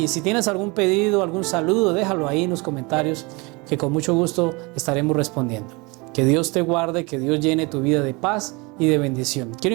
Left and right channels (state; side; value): quieter; left; 27.1 dB